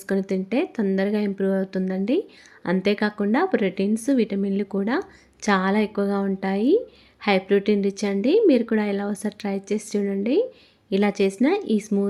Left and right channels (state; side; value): identical; both; correlation 1.00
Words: తింటే తొందరగా ఇంప్రూవ్ అవుతుందండి. అంతేకాకుండా ప్రోటీన్స్, విటమిన్లు కూడా చాలా ఎక్కువగా ఉంటాయి. హై ప్రోటీన్ రిచ్ అండి. మీరు కూడా ఇలా ఒకసారి ట్రై చేసి చూడండి. ఇలా చేసిన ఈ